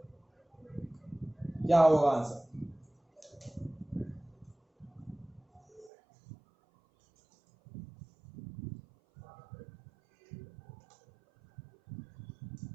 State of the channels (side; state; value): left; drops out; at 5.9 s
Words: क्या होगा आंसर?